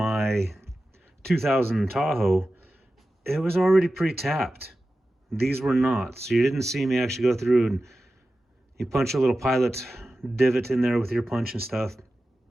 2000 Tahoe, it was already pre-tapped. These were not. So you didn't see me actually go through and you punch a little pilot divot in there with your punch and stuff.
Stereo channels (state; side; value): normal; both; correlation 0.94